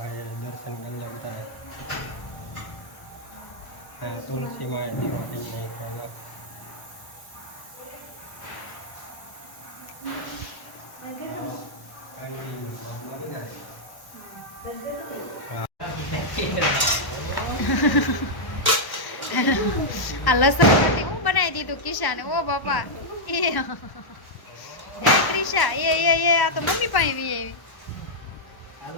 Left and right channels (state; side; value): late; right; 1.1 ms